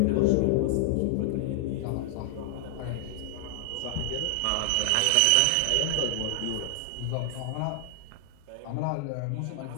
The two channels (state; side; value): different; both; correlation -0.01